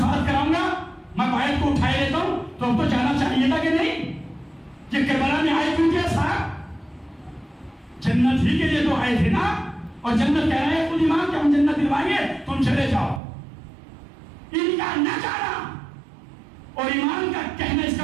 कराऊंगा, मैं बायत को उठाए लेता हूं। तो अब तो जाना चाहिए था कि नहीं? ये करबला में आए क्यों थे साहब? जन्नत ही के लिए तो आए थे ना। और जन्नत कह रहे हैं खुद इमाम कि हम जन्नत दिलवाएंगे, तुम चले जाओ। इनका न जाना और ईमान का कहना,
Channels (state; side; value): drops out; left; at 13.2 s